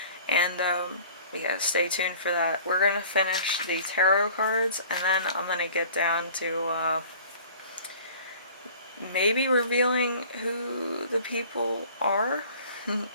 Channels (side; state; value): both; inverted; correlation -0.47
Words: And yeah, stay tuned for that. We're going to finish the tarot cards, and then I'm going to get down to maybe revealing who the people are